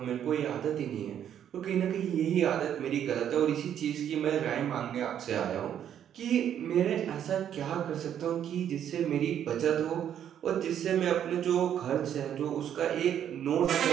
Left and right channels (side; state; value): left; quieter; 9.7 dB